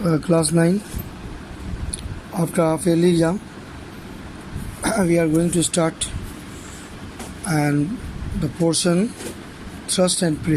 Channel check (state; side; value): identical; both; correlation 1.00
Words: class 9. After half yearly exam, we are going to start and the portion thrust and